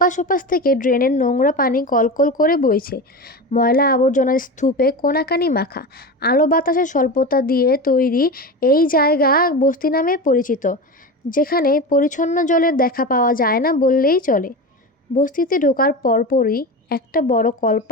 ওপাশ থেকে ড্রেনের নোংরা পানি কলকল করে বইছে। ময়লা আবর্জনার স্তূপে কোনাকানি মাখা। আলো বাতাসের স্বল্পতা দিয়ে তৈরি এই জায়গা বস্তি নামে পরিচিত, যেখানে পরিচ্ছন্ন জলের দেখা পাওয়া যায় না বললেই চলে। বস্তিতে ঢোকার পরপরই একটা বড়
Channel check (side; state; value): both; normal; correlation 0.25